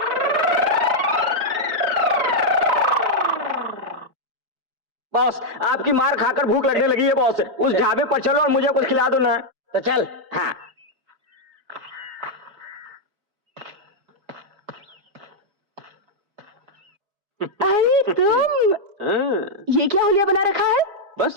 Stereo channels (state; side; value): late; left; 4.9 ms